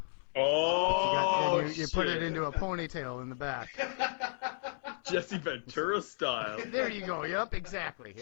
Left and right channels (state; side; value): silent; right; 55 dB below the other